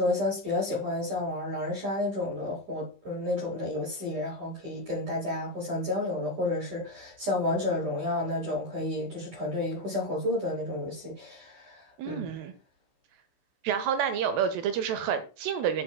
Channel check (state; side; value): late; left; 15 ms